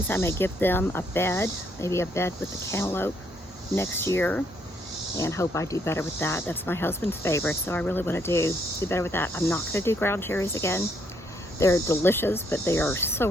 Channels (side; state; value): both; normal; correlation 0.71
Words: I may give them a bed, maybe a bed with the cantaloupe next year, and hope I do better with that. That's my husband's favorite, so I really wanna do better with that. I'm not gonna do ground cherries again. They're delicious, but they are so